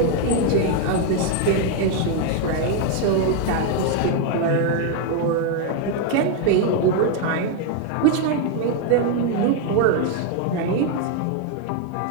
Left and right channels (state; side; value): different; both; correlation 0.01